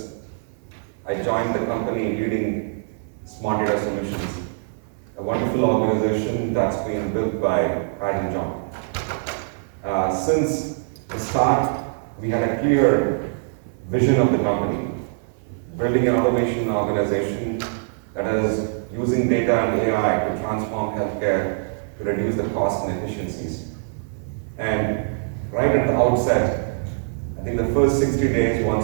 I joined the company leading Smart Solutions, a wonderful organization that's been built by Pat and John. Since the start, we had a clear vision of the company, building an automation organization that is using data and AI to transform healthcare to reduce the costs and efficiencies. And right at the outset, I think the first 60 days,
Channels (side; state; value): left; silent; 57 dB below the other